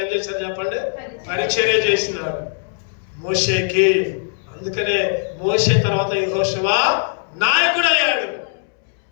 ఏం చేశారు చెప్పండి, పరిచర్య చేసినారు మోషేకి. అందుకనే మోషే తర్వాత యెహోషువ నాయకుడు అయ్యాడు,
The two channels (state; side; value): silent; right; 66 dB below the other